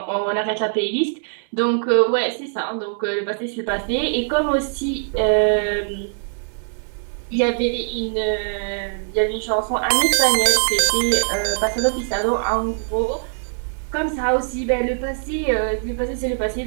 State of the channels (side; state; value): left; silent; 62 dB below the other